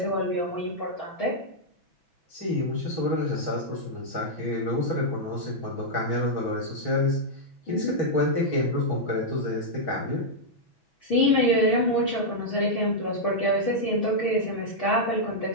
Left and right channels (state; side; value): late; right; 6.1 ms